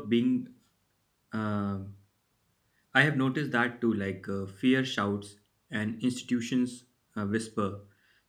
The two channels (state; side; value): identical; both; correlation 1.00